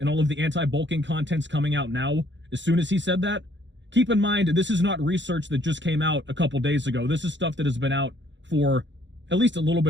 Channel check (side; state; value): left; late; 0.53 ms